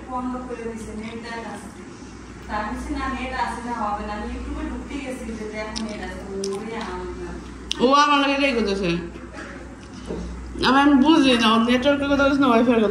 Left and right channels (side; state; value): both; identical; correlation 1.00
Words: ও আমার লাগে রেগে করতেছে আমি বুঝি না নেটওয়ার্কের কথা বলছে না ওয়াইফাই